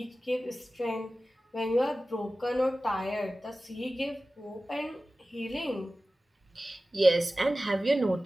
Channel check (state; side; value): normal; both; correlation 0.96